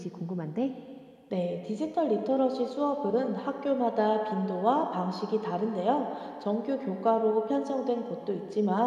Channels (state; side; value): identical; both; correlation 1.00